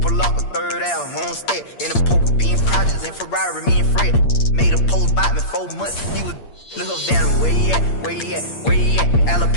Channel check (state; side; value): late; right; 8.7 ms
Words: Lock a third out, homestead in a poker bean projects in Ferrari, me and Fred made a post about me 4 months. He was look up down where he at,